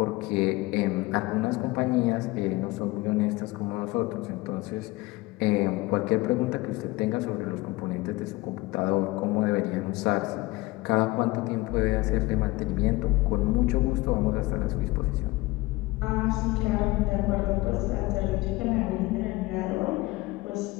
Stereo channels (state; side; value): quieter; right; 21.0 dB